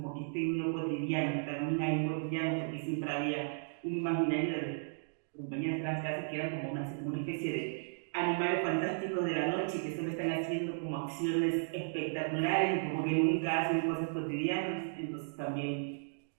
que esté en lo cotidiano, también hay un cotidiano, porque siempre había un imaginario de compañías trans casi que eran como una especie de animales fantásticos de la noche que solo están haciendo como acciones espectaculares y como que nunca hacen cosas cotidianas, entonces también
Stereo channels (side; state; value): left; silent; digital silence